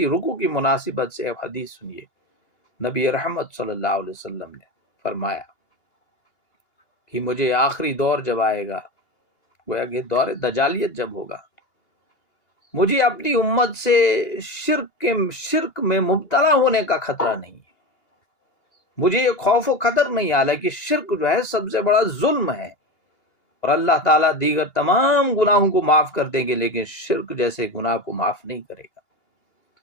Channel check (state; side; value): late; right; 2.8 ms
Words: رکوع کی مناسبت سے اب حدیث سنیے، نبی رحمت صلی اللہ علیہ وسلم نے فرمایا کہ مجھے آخری دور جب آئے گا، گویا کہ دور دجالیت جب ہوگا، مجھے اپنی امت سے شرک میں مبتلا ہونے کا خطرہ نہیں ہے، مجھے یہ خوف و خطر نہیں، حالانکہ شرک جو ہے سب سے بڑا ظلم ہے، اور اللہ تعالیٰ دیگر تمام گناہوں کو معاف کر دیں گے لیکن شرک جیسے گناہ کو معاف نہیں کرے گا۔